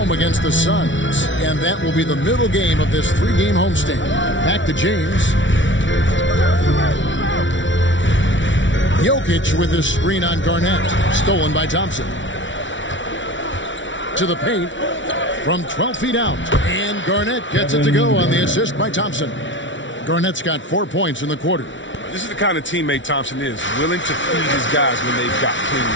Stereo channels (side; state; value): right; late; 0.55 ms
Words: against the Suns. And that will be the middle game of this 3-game homestand. Back to James. Jokic with his screen on Garnett. Stolen by Thompson. To the paint from 12 feet out. And Garnett gets it to go on the assist by Thompson. Garnett's got 4 points in the quarter. This is the kind of teammate Thompson is, willing to feed his guys when they've got clean